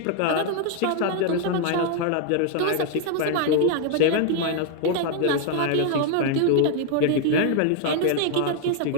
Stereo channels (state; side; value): different; both; correlation 0.00